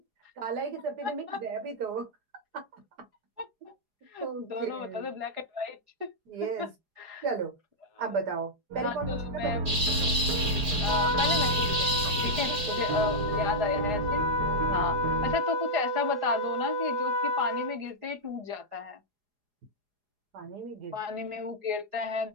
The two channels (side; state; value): left; late; 4.8 ms